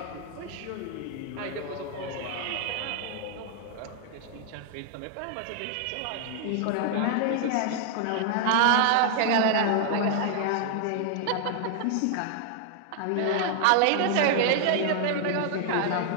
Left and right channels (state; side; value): different; both; correlation 0.00